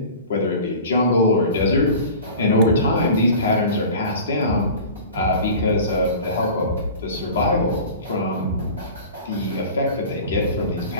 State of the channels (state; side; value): inverted; both; correlation -0.39